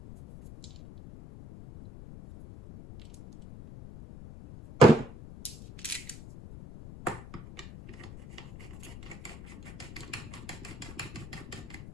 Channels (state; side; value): noise; left; rumble, 14 dB below the sound